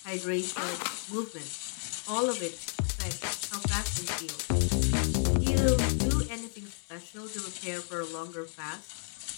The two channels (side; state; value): right; silent; 57 dB below the other